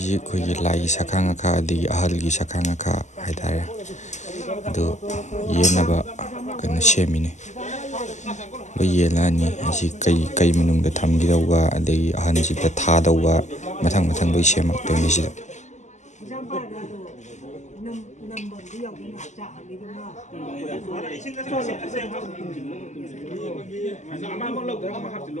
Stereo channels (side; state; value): right; late; 0.34 ms